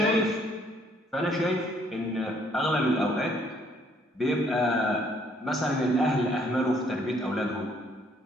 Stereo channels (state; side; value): normal; both; correlation 0.65